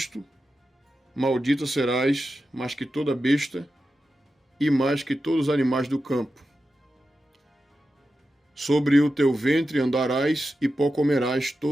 maldita serás mais que toda besta e mais que todos os animais do campo. Sobre o teu ventre andarás e pó comerás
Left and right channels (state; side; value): normal; both; correlation 0.91